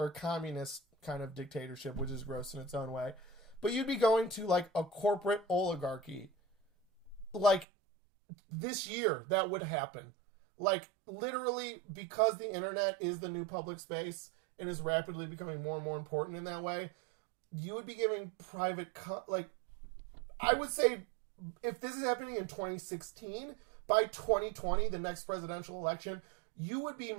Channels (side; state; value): left; drops out; at 7.7 s